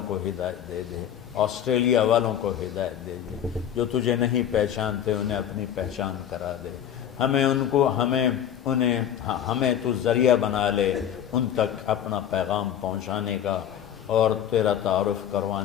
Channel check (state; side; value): quieter; right; 9.9 dB